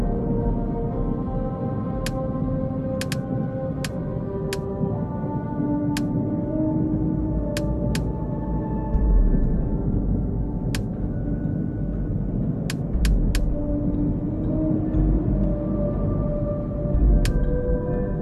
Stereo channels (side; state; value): both; identical; correlation 1.00